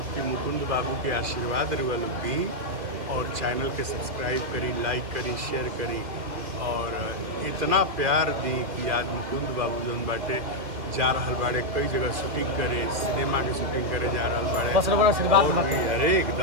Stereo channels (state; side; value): late; left; 2.1 ms